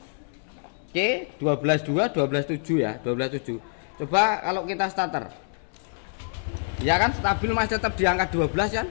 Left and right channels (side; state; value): right; silent; 59 dB below the other